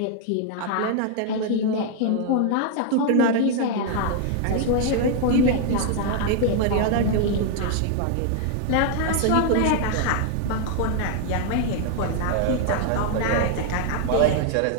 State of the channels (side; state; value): both; different; correlation 0.00